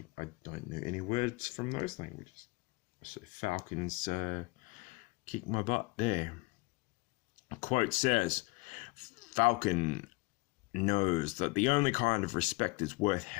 I don't know any words from those languages. So Falcons kick my butt there. A quote says, Falcon knows that the only kind of respect that's worth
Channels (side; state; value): right; quieter; 24.8 dB